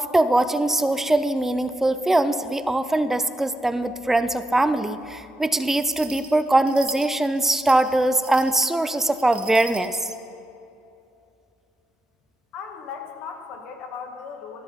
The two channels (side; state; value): both; normal; correlation 0.86